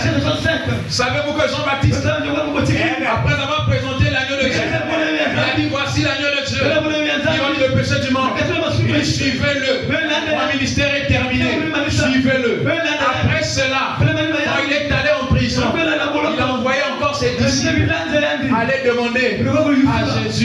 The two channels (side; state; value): both; identical; correlation 1.00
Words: Savez-vous que Jean-Baptiste, après avoir présenté l'agneau de Dieu, il a dit voici l'agneau de Dieu, qui ôte le péché du monde. Il suivez-le. Mon ministère est terminé. Suivez-le. Après cela, quand il est allé en prison, il a envoyé encore ses disciples aller allait demander à